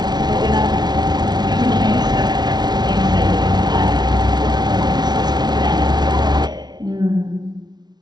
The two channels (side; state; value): left; late; 0.20 ms